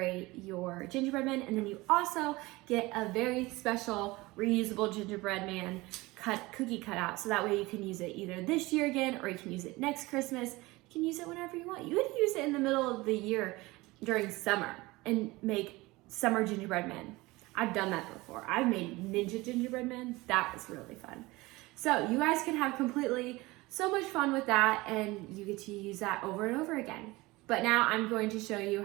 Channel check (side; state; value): left; quieter; 21.4 dB